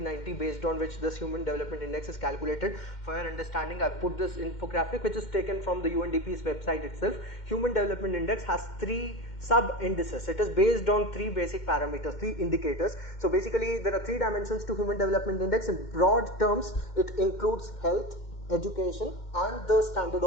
based on which this Human Development Index is calculated. For your understanding, I put this infographic which is taken from the UNDP's website itself. Human Development Index has 3 sub indices. It is based on 3 basic parameters, 3 indicators. So basically there are 3 dimensions to Human Development Index. In broad terms, it includes health, education and the standard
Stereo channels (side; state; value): right; late; 2.1 ms